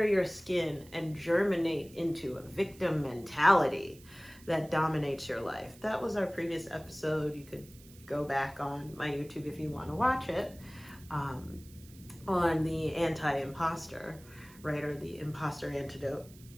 your skin and germinate into a victim mentality that dominates your life. That was our previous episode. You could go back on my YouTube if you want to watch it, on the anti-imposter, right? Or the imposter antidote.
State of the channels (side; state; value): right; noise; hiss, 23 dB below the sound